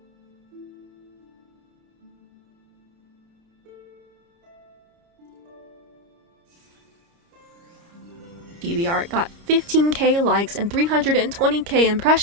chibi art got 15k likes and 320k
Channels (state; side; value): late; left; 29 ms